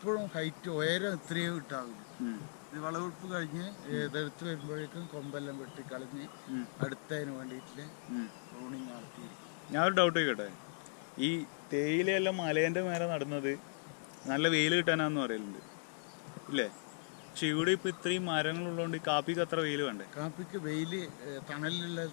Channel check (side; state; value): right; silent; digital silence